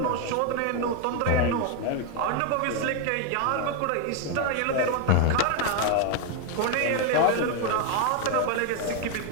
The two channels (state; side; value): different; both; correlation 0.01